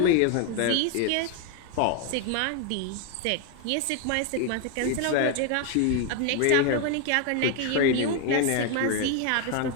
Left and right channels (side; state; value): both; different; correlation 0.01